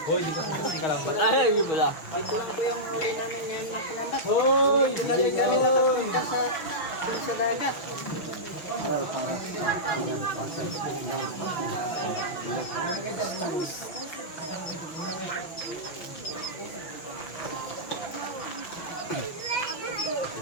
Hoy, di ka kasi kalambat. Ay, yun pala. Ito lang po yung huli namin ngayon na kalambat. Hoy! Dali kami nakapunta dun sa dagat.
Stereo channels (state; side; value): late; right; 6.5 ms